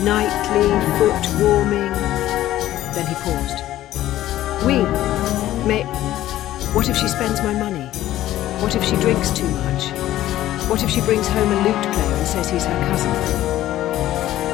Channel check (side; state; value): right; quieter; 14.0 dB